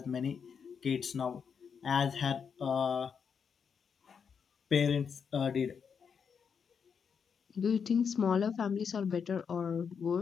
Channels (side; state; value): right; quieter; 6.6 dB